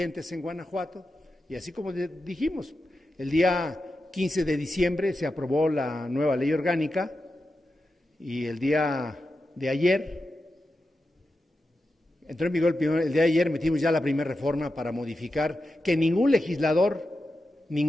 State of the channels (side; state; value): both; normal; correlation 0.90